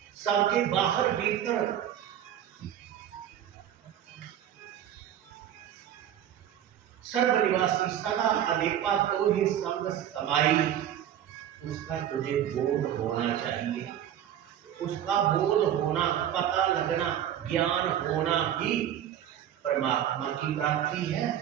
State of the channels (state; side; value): quieter; left; 10.6 dB